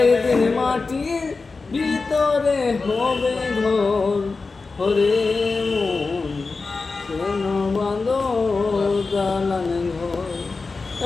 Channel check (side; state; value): right; quieter; 4.1 dB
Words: একদিন মাটির ভিতরে হবে ঘর ঘরে মন কেন বাঁধো দালানে ঘর